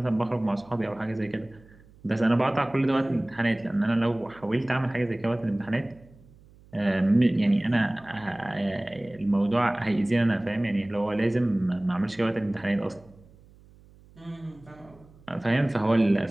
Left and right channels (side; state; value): right; noise; hum, 26 dB below the sound